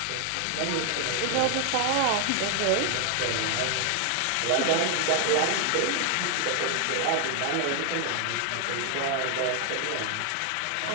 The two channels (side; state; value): both; different; correlation 0.00